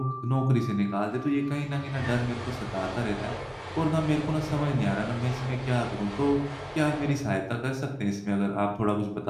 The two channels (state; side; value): identical; both; correlation 1.00